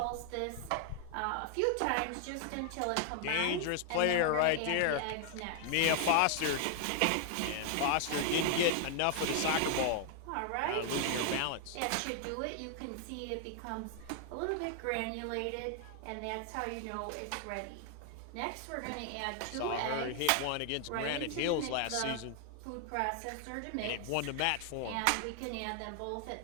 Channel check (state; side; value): different; both; correlation 0.00